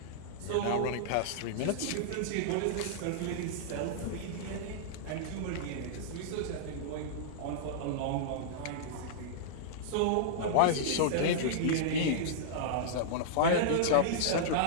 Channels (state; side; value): different; both; correlation -0.02